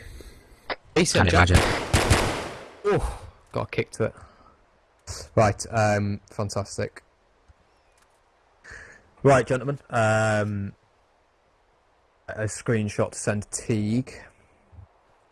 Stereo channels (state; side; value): identical; both; correlation 1.00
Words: BCM Jack. Oh, got a kick to it. Right, fantastic. Right, gentlemen. A screenshot to send to Teague.